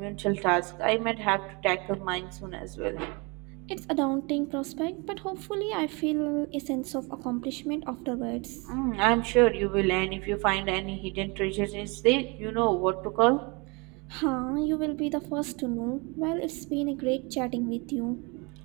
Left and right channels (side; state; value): left; quieter; 29.4 dB